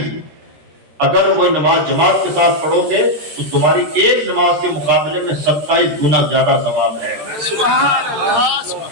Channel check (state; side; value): late; left; 13 ms